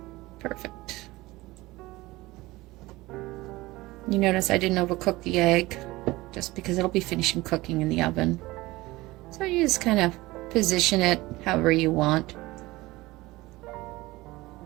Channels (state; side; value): quieter; left; 19.9 dB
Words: Perfect. You notice I didn't overcook the egg just because it'll be finishing cooking in the oven. So you just kind of position it however you want.